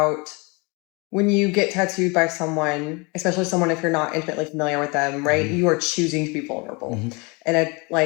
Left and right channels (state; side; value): quieter; right; 28.8 dB